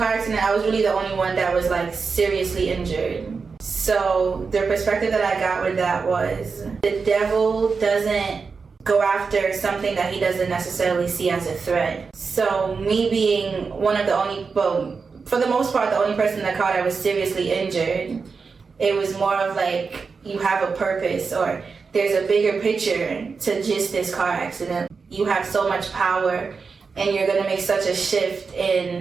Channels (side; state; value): left; quieter; 5.0 dB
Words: accident, I was really the only one that was like seriously injured. So the perspective that I got with that was the devil doesn't go after something that he doesn't necessarily see as a threat. So me being one of the only, well, for the most part, the only person in the car that was seriously injured, it was more of like, you have a purpose, or there's a bigger picture to just this car accident. You have so much power, and you're gonna make such a shift